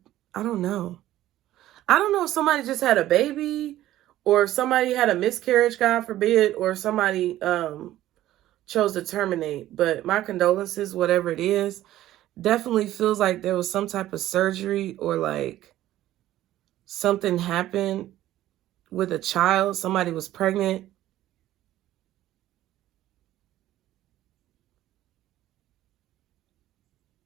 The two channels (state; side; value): quieter; left; 14.1 dB